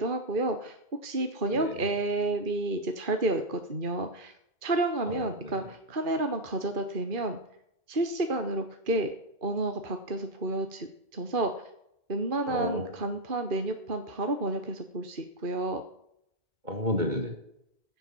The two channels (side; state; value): left; late; 2.4 ms